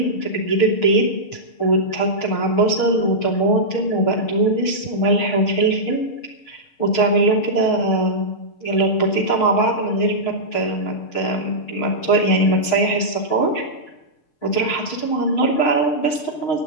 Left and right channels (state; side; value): late; right; 6.4 ms